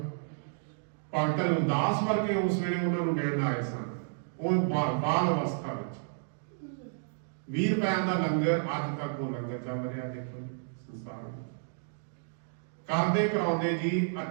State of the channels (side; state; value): left; silent; digital silence